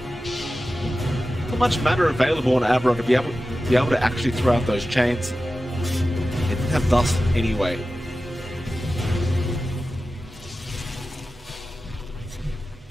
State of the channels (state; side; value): normal; both; correlation 0.94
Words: Not much mana available on Abra to be able to actually throw out those chains. They didn't have dust anyway.